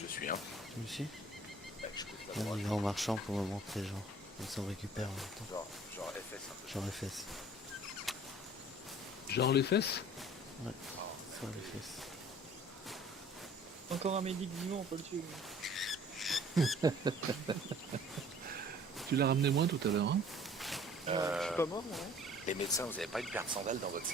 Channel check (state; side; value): normal; both; correlation 0.51